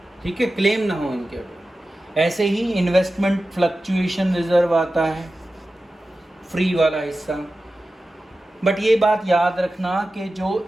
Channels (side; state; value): both; normal; correlation 0.94